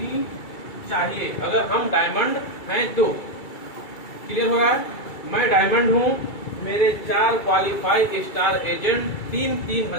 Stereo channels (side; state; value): right; late; 2.3 ms